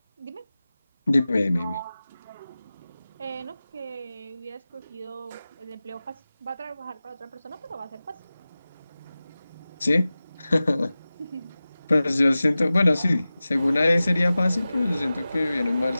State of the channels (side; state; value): both; inverted; correlation -0.96